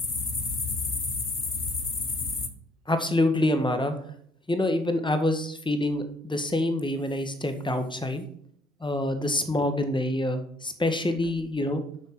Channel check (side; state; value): both; normal; correlation 0.67